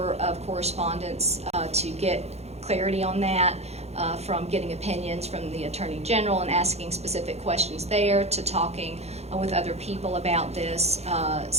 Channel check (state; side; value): late; left; 0.31 ms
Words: of correspondence to get clarity on that, from getting opinions from the Attorney General and asking specific questions there, to talking with other people about this,